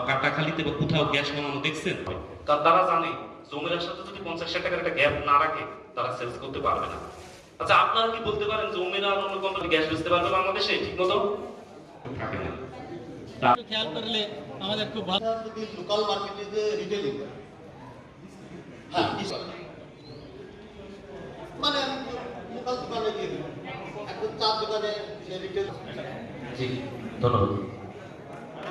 কাটাখালিতে বা কোথাও গ্যাস বানানো দেখছেন? কারণ তারা জানে জমির সাথে যদি 50 টাকার একটা গ্যাপ না রাখে তারা সেলস করতে পারবে না। আচ্ছা, আপনারা কি বলতে পারেন জমির আর অন্য কোম্পানি গ্যাস বেচতে পারবে বাংলাদেশে? ঠিক মতো থাকে না। খেয়াল করলে আমাদের খুব ভালো। যদি লোকাল মার্কেটে যে রিটেলিং, হ্যাঁ মানে লোকাল দোকানে গিয়ে এখন 4 দোকানে সে রিটেল। জি, ধন্যবাদ।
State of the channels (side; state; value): both; identical; correlation 1.00